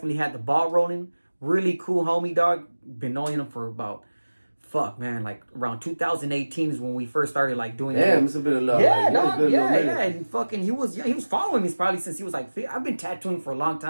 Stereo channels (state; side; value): inverted; both; correlation -1.00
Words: had the ball rolling. Really cool homie, dog. Been knowing him for about like around 2018 is when we first started like doing that. Damn, it's been a lot. Yeah, dog. Yeah. And fucking he was following me probably since he was like, I've been tattooing for a long